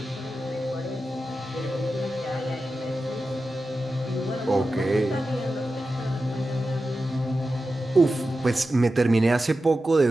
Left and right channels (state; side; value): normal; both; correlation 0.92